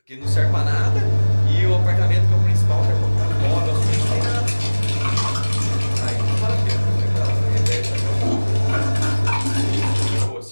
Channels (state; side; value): inverted; both; correlation -1.00